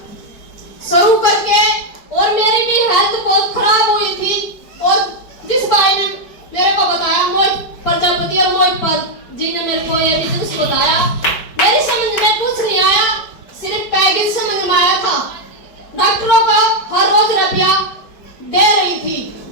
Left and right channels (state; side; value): late; right; 4.9 ms